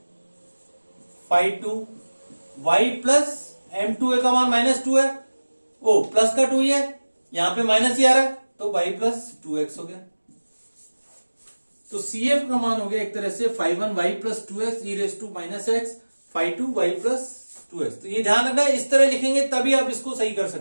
फाई 2 y प्लस m2 का मान -2 है, वो प्लस का 2 ही है, यहां पे माइनस ही आ रहा है तो y प्लस 2x हो गया। तो CF का मान हो गया एक तरह से phi 1 y plus 2x E raise to minus X, phi 2 y plus 2x। तो ये ध्यान रखना है, इस तरह लिखेंगे तभी आप इसको सही कर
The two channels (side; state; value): both; inverted; correlation -1.00